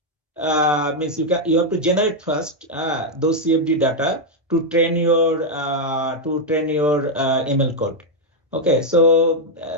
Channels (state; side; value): normal; both; correlation 0.00